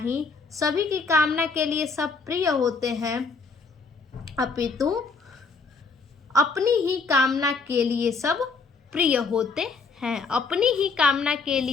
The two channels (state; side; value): quieter; right; 4.5 dB